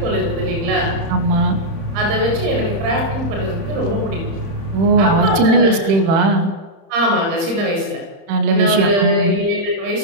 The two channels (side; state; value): left; late; 31 ms